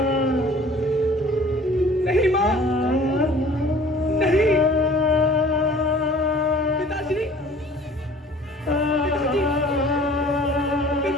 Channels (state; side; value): normal; both; correlation 0.49